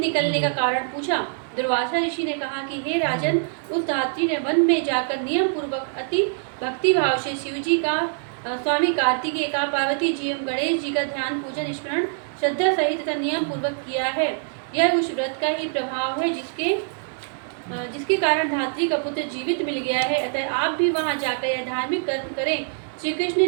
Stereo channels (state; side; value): silent; left; 63 dB below the other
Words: निकलने का कारण पूछा। दुर्वासा ऋषि ने कहा कि हे राजन, उस धात्री ने वन में जाकर नियम पूर्वक अति भक्ति भाव से शिवजी का, स्वामी कार्तिकेय का, पार्वती जी एवं गणेश जी का ध्यान, पूजन, स्मरण श्रद्धा सहित तथा नियम पूर्वक किया है। यह उस व्रत का ही प्रभाव है जिसके कारण धात्री का पुत्र जीवित मिल गया है। अतः आप भी वहां जाकर यह धार्मिक कर्म करें। श्री